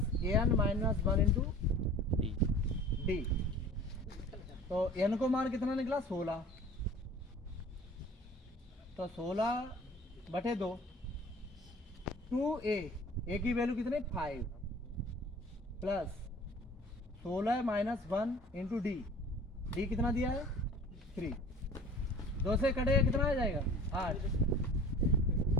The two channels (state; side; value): normal; both; correlation 0.44